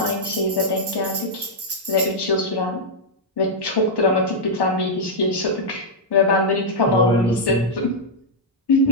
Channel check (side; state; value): both; normal; correlation -0.04